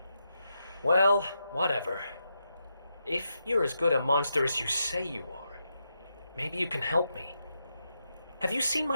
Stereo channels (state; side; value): inverted; both; correlation -0.84